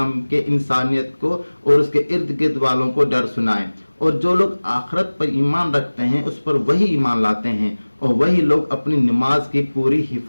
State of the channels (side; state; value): both; inverted; correlation -1.00